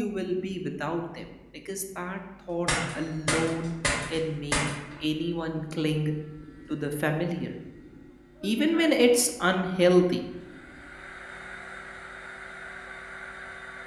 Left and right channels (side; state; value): both; identical; correlation 1.00